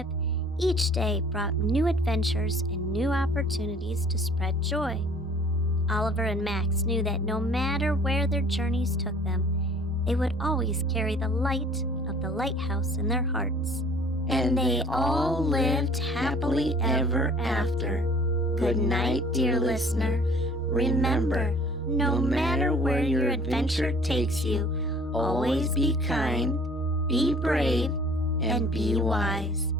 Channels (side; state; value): both; normal; correlation 0.52